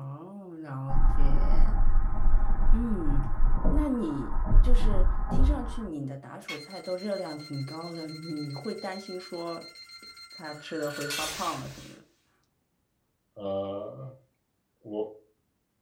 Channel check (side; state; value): both; identical; correlation 1.00